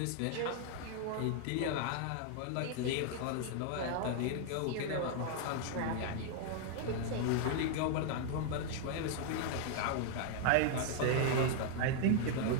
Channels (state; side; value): different; both; correlation 0.00